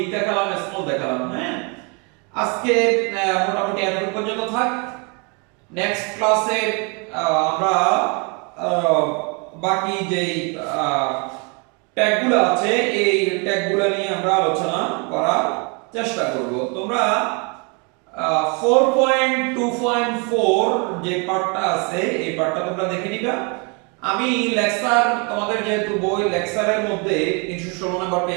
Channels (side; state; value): left; quieter; 33.3 dB